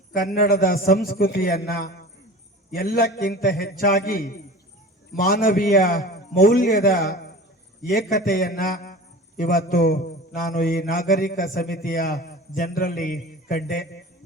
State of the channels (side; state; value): both; normal; correlation 0.37